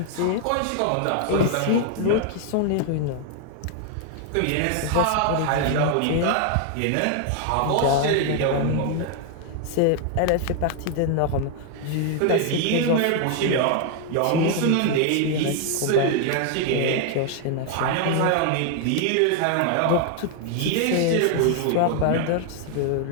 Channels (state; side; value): different; both; correlation 0.00